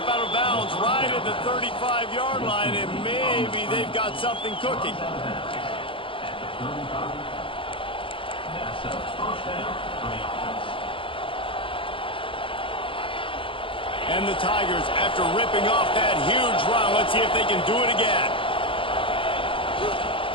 out of bounds right at the 35-yard line, and maybe they've got something cooking. And the Tigers, after ripping off that huge run, let's see if they can do it again.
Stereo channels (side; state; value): right; late; 0.25 ms